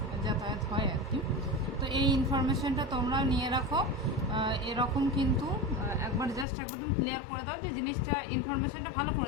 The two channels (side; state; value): right; drops out; at 6.5 s